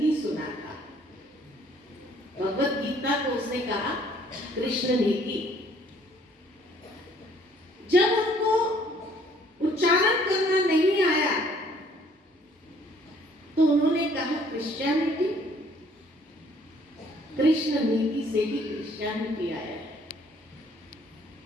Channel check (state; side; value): normal; both; correlation 0.61